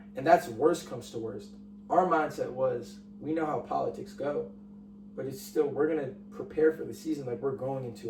And that's worst comes to worst. Our mindset was, we know how politics go, but it's still, we're going to prepare for the season like we're going into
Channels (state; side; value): identical; both; correlation 1.00